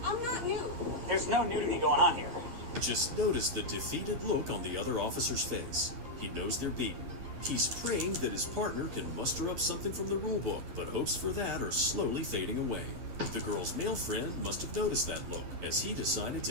I'm not nude. There's no nudity going on here. Just notice the defeated look on the other officer's face. He knows they're beaten. He's praying that his partner can muster up something from the rulebook, but hopes for that are slowly fading away. The girl's male friend must have noticed that look, as he decided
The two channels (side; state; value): left; late; 11 ms